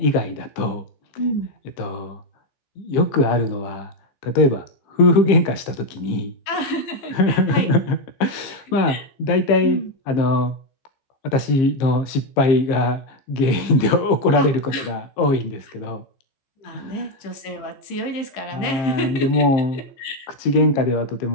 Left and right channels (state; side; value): late; right; 15 ms